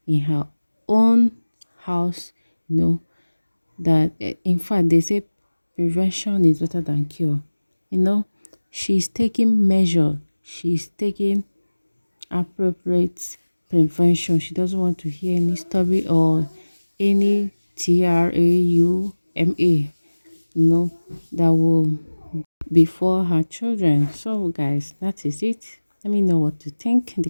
in her own house. That in fact they say prevention is better than cure. She's taking measure. She's taking appropriate prevention. She doesn't want to hear any story or any trauma, that will before her children. So guys, that is it. Let me know what you think in the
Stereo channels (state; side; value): inverted; both; correlation -1.00